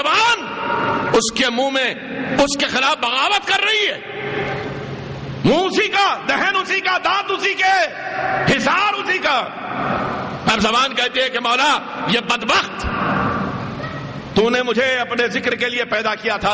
اس کے منہ میں اس کے خلاف بغاوت کر رہی ہے. منہ اسی کا, دہن اسی کا, دانت اسی کے, حصار اسی کا. اب زبان کہتی ہے کہ مولا یہ بدبخت تو نے مجھے اپنے ذکر کے لیے پیدا کیا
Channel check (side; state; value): both; identical; correlation 1.00